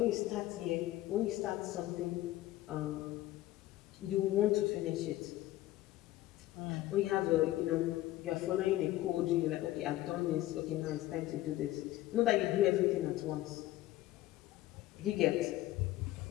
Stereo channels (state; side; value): quieter; right; 15.7 dB